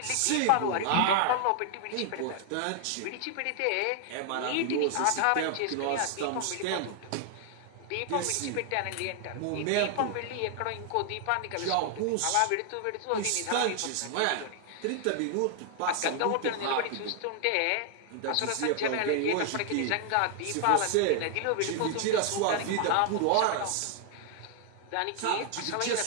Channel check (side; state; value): both; different; correlation 0.00